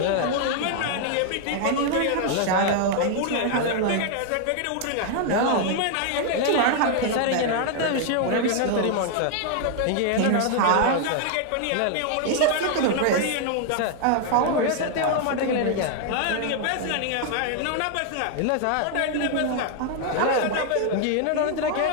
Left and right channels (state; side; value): different; both; correlation 0.00